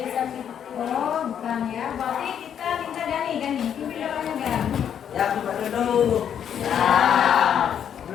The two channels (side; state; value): right; quieter; 8.8 dB